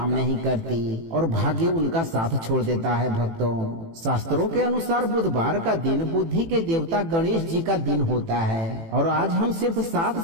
नहीं करती और भाग्य उनका साथ छोड़ देता है। भक्तों, शास्त्रों के अनुसार बुधवार का दिन बुद्धि के देवता गणेश जी का दिन होता है और आज हम सिर्फ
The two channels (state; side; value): late; left; 18 ms